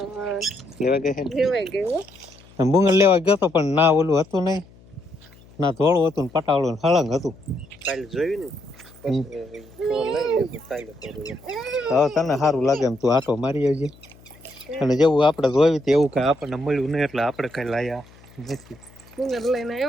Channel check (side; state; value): left; noise; hum, 25 dB below the sound